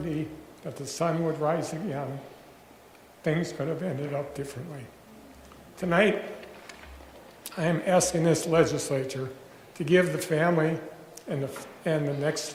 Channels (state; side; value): identical; both; correlation 1.00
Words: that the sun would rise again, things could have ended up differently. Tonight, I am asking this legislature to give the family and the